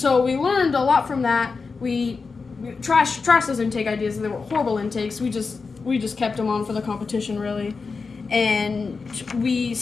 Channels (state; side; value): quieter; right; 4.6 dB